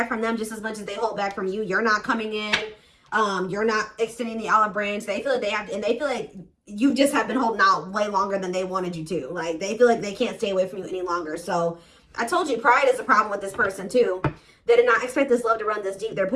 from them just as much as they hold back from you. You're not coming in. You're not extending the olive branch. They feel like they have to, and they feel like you just have been holding out way longer than they wanted you to. Like, they feel like they can't stay away from you any longer. So I told you, pride is a problem with this person too. They did not expect this love to run this deep. They're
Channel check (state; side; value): identical; both; correlation 1.00